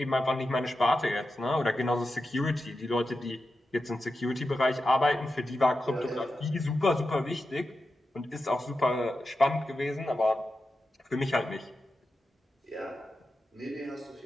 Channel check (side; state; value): both; normal; correlation 0.91